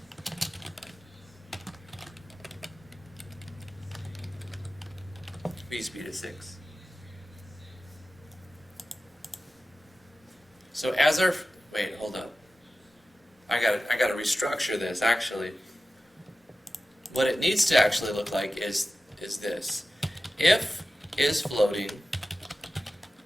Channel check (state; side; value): normal; both; correlation 0.94